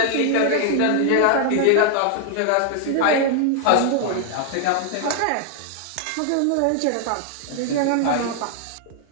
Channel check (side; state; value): both; different; correlation 0.00